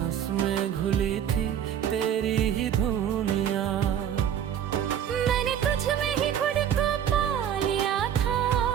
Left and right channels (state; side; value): quieter; left; 9.5 dB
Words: में घुली थी तेरी ही धुनिया। मैंने तुझ में ही खुद को पा लिया था,